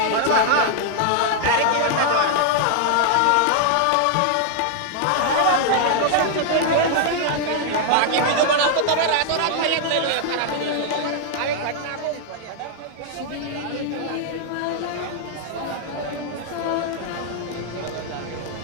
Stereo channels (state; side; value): different; both; correlation 0.00